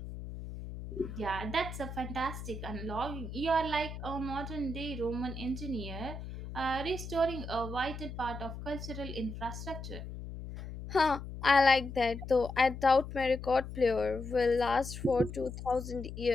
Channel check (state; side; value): noise; left; hum, 9 dB below the sound